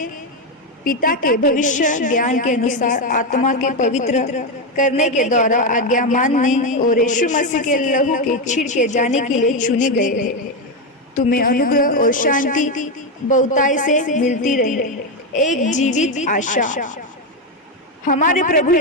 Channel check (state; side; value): normal; both; correlation 0.09